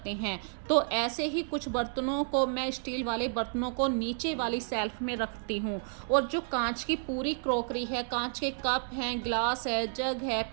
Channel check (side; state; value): left; silent; digital silence